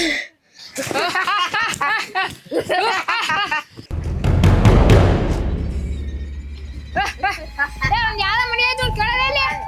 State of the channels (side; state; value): both; identical; correlation 1.00